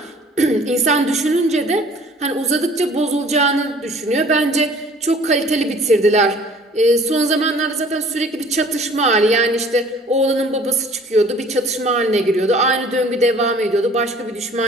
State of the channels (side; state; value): both; normal; correlation 0.52